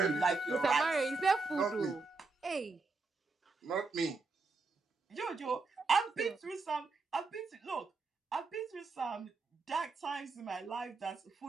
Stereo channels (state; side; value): quieter; left; 4.0 dB